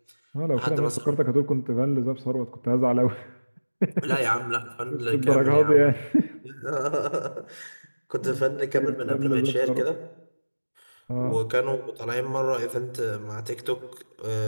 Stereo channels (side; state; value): both; inverted; correlation -1.00